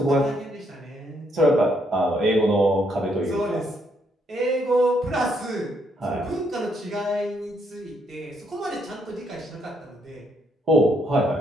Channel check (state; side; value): normal; both; correlation 0.73